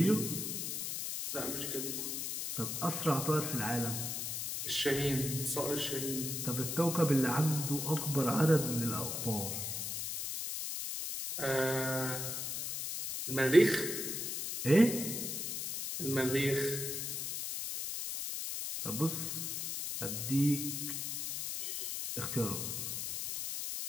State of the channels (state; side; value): noise; left; hiss, 3 dB below the sound